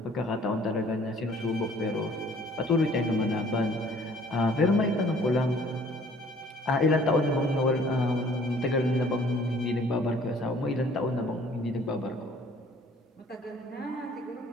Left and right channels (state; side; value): normal; both; correlation 0.56